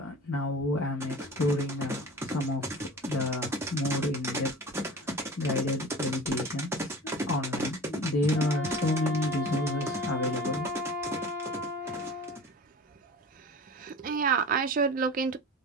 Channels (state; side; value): normal; both; correlation 0.37